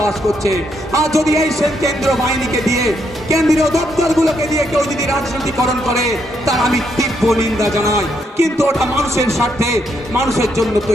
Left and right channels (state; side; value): normal; both; correlation 0.76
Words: করছে, আর যদি এই কেন্দ্র বাহিনীকে দিয়ে, কেন্দ্রীয় দপ্তরগুলোকে দিয়ে কেউ যদি রাজনীতিকরণ করে, তার আমি তীব্র নিন্দা জানাই। কিন্তু ওটা মানুষের স্বার্থে, মানুষের জন্য